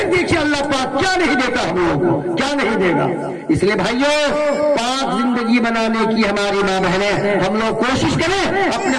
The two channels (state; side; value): identical; both; correlation 1.00